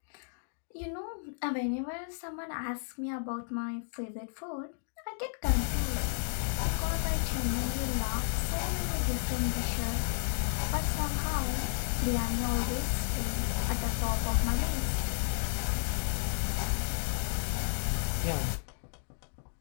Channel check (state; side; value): silent; right; digital silence